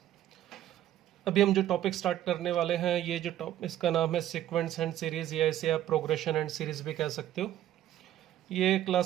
अभी हम जो टॉपिक स्टार्ट करने वाले हैं ये जो इसका नाम है सीक्वेंस एंड सीरीज़, या इसे आप प्रोग्रेशन एंड सीरीज़ भी कह सकते हो। ये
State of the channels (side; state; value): left; quieter; 12.6 dB